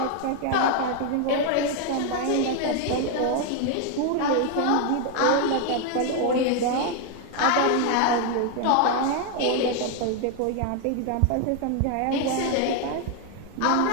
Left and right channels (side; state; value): both; different; correlation 0.00